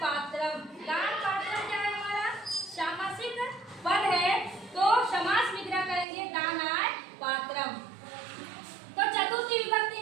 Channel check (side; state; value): left; drops out; at 6.1 s